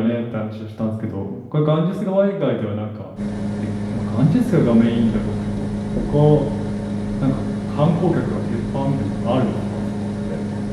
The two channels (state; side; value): identical; both; correlation 1.00